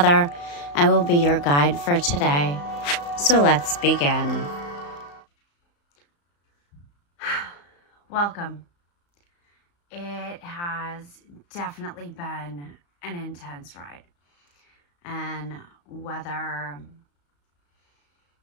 I will be your guide for today. So let's begin. Welcome. It has definitely been an intense ride. And whether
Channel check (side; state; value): right; late; 35 ms